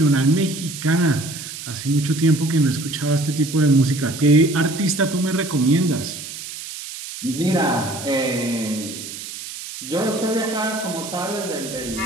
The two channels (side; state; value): right; noise; hiss, 10 dB below the sound